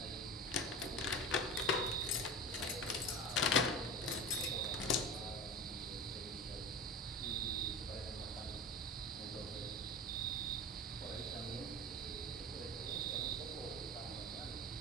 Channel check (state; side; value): normal; both; correlation 0.30